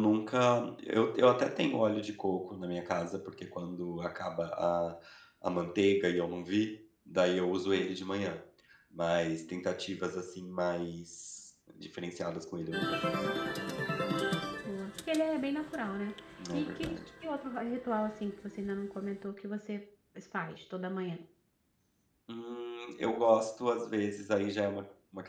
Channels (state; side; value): identical; both; correlation 1.00